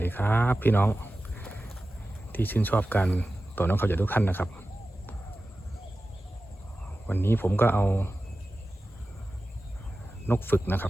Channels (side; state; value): both; normal; correlation 0.95